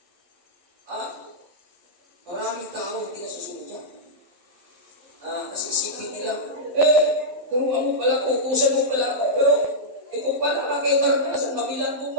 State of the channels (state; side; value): late; left; 11 ms